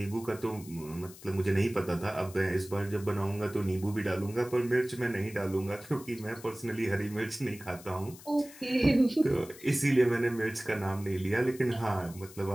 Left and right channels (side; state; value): left; noise; hiss, 19 dB below the sound